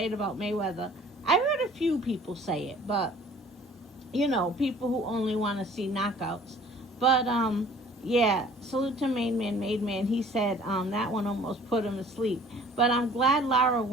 it about Mayweather. I heard a few people say it, but, you know, people who only want to see knockouts. But, yeah, salute to Main Man, Made Man. He said that one almost put him to sleep. But I'm glad Lara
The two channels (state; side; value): normal; both; correlation 0.52